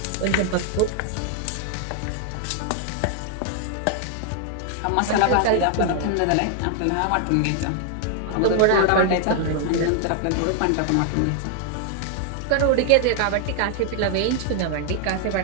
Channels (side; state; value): both; different; correlation 0.00